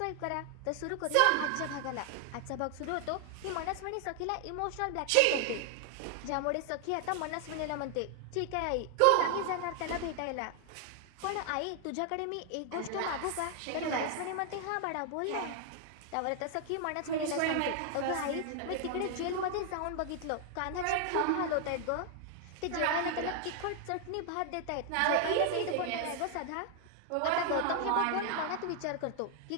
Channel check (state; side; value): different; both; correlation 0.00